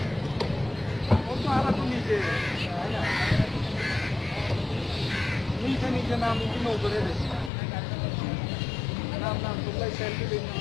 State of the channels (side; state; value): right; drops out; at 7.5 s